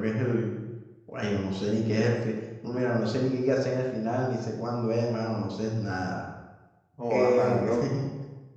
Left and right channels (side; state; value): both; identical; correlation 1.00